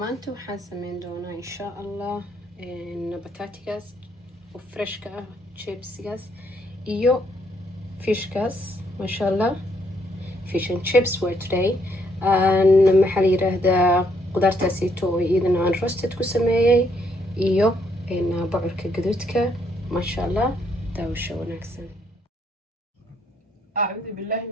waxaan sameyn doonaa insha allah bataatigaas oo freshka ah, chipsigaas iyo fishkaas. masha allah, fish and chips were today. maxaa la yiraahdaa qudaartaasito oo iyadana aan roasted ku sameeyey iyo bocorka gaduudka. masha allah, daawasho wanaagsan. أعوذ بالله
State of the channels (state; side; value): normal; both; correlation 0.72